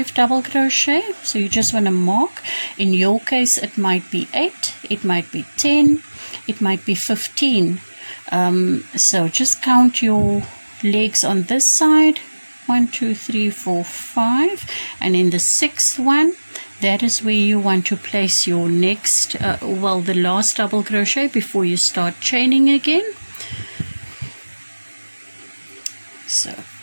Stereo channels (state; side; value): inverted; both; correlation -1.00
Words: double crochet, so you just want to mark. In your case it might be 8, it might be 10, it might be 15. So just count your legs on this side, 1 2 3 4 5, and in the 6th one, that is where you want to place your next the last double crochet before you start chaining again. So